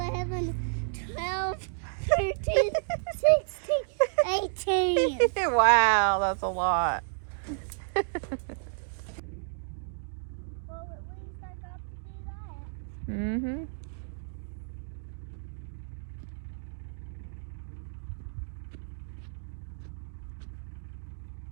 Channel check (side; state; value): left; silent; digital silence